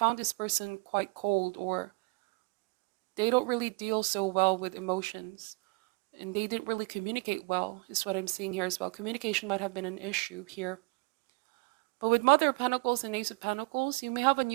this person quite cold, or they don't really deal so well with emotions. And they didn't really communicate well, is what I'm seeing here as well. Communication might have been an issue here. But with Mother of Pentacles and Ace of Pentacles, you may have a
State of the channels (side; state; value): left; quieter; 29.1 dB